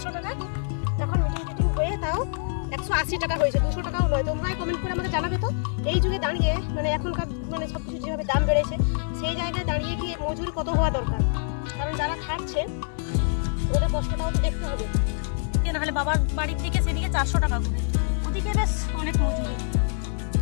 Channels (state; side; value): silent; right; digital silence